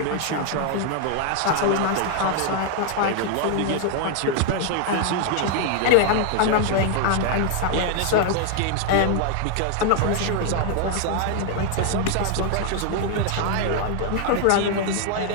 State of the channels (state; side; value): different; both; correlation 0.00